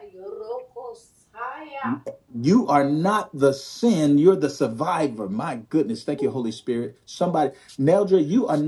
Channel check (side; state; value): both; identical; correlation 1.00